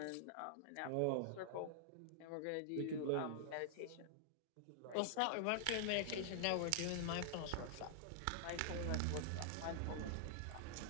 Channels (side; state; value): both; different; correlation -0.01